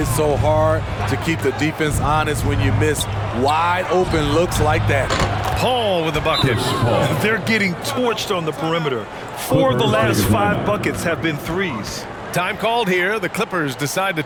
so hard to keep the defense honest when you miss wide open looks like that. Paul with the bucket. They're getting torched on the perimeter. 4 of the last 5 buckets have been threes. Time called here. The Clippers decide to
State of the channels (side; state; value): both; identical; correlation 1.00